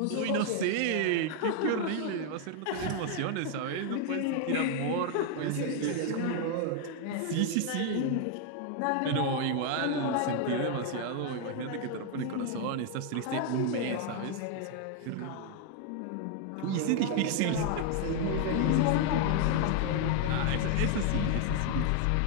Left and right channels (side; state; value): both; different; correlation 0.00